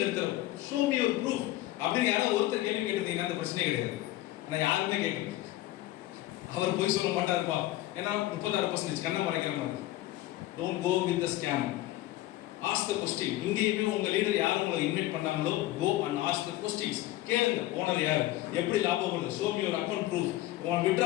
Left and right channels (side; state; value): right; quieter; 16.2 dB